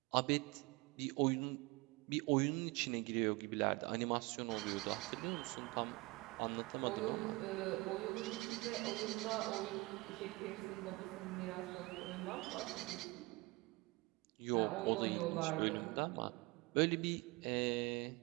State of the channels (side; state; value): left; quieter; 24.4 dB